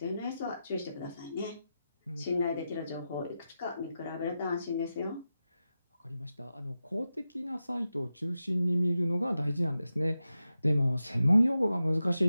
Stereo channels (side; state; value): both; inverted; correlation -0.91